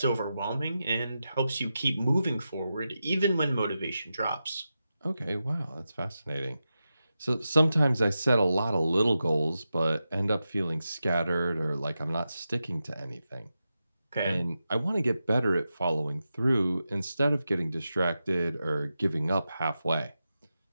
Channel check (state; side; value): inverted; both; correlation -0.90